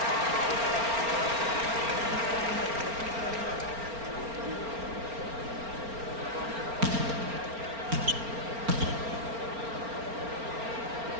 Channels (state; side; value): late; left; 4.4 ms